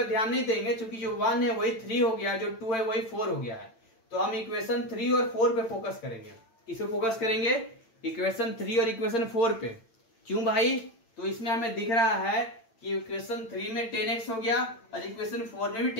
ध्यान नहीं देंगे, क्योंकि जो 1 है वही 3 हो गया, जो 2 है वही 4 हो गया है। तो हम इक्वेशन 3 और 4 पे फोकस करेंगे। किस पे फोकस करेंगे, इक्वेशन 3 और इक्वेशन 4 पे। क्यों भाई, तो इसमें हमें दिख रहा है कि इक्वेशन 3 में 10x हो गया और इक्वेशन 4 में भी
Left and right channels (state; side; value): late; right; 8.9 ms